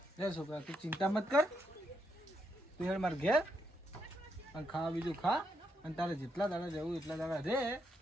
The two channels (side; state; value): both; normal; correlation 0.80